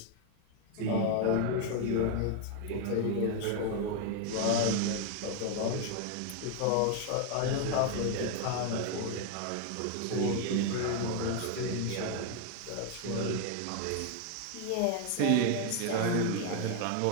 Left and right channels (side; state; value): both; different; correlation 0.00